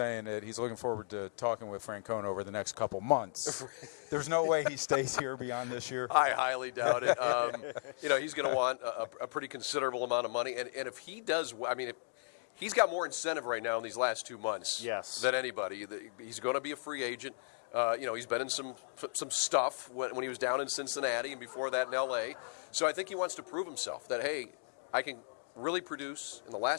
that he's looking forward to talking with Francona over the next couple months. There's no way he stays here beyond this year. I highly doubt it. You know, he's going to want a pretty considerable amount of money. And if he does, I mean, he's got more incentive right now in these last 2 months than anybody. He's going to be a free agent. You know, he's been in some stuff when he was down in Cincinnati and before that in L.A. So I think he wants to prove himself that, hey, I can really produce in the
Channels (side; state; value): right; silent; digital silence